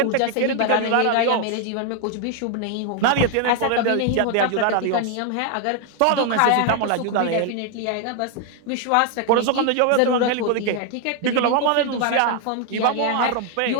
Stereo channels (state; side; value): different; both; correlation 0.00